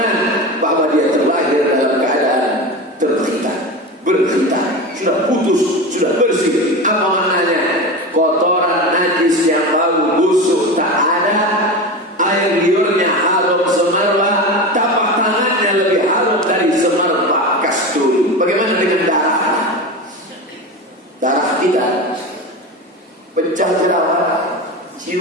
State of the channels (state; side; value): normal; both; correlation 0.25